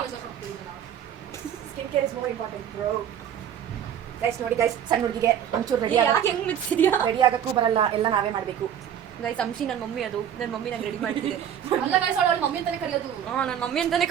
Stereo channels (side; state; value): left; quieter; 9.5 dB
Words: ಗೈಸ್ ನೋಡಿ ಗೈಸ್, ಸಣ್ಣ ಹುಡುಗಿಗೆ ಒಂಚೂರು ರೆಡಿ ರೆಡಿ ಆಗಕ್ಕೂ ಬರಲ್ಲ, ಎಲ್ಲ ನಾವೇ ಮಾಡ್ಬೇಕು ಗೈಸ್. ಅಂಶಿ ನನ್ನ ಮಮ್ಮಿ, ಅದು ನನ್ನ ಮಮ್ಮಿ ನಂಗೆ ರೆಡಿ ಮಾಡ್ತಿದ್ದೆ. ಮಮ್ಮಿ ಅಂತಾನೆ ಕರೆಯೋದು. ನನ್ನ ಮಮ್ಮಿ ಅಂತಾನೆ